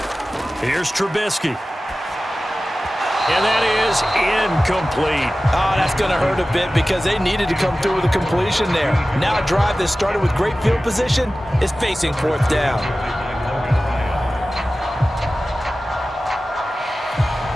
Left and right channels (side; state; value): both; normal; correlation 0.96